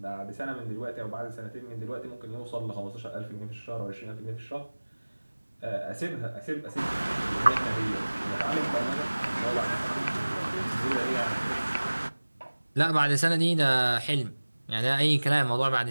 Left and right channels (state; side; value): inverted; both; correlation -1.00